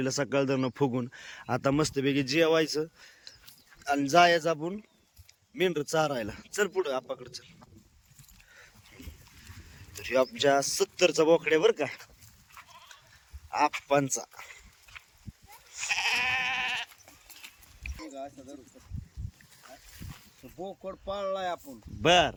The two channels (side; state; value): both; identical; correlation 1.00